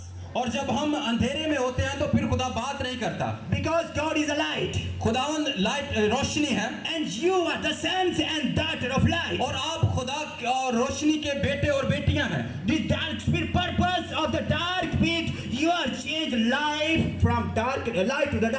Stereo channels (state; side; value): identical; both; correlation 1.00